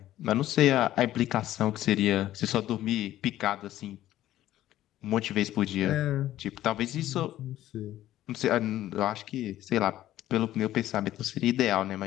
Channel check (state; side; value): quieter; right; 13.7 dB